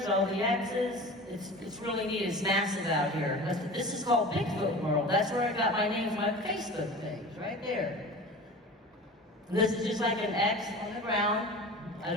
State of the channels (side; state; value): both; normal; correlation 0.36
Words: all the X's. It's really neat, it's massive out here. This is called Bigfoot World. That's where I got my name from my Facebook page, right there. And this is just like an X on the ground. I